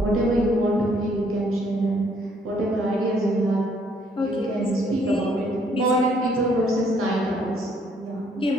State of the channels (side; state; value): both; normal; correlation 0.66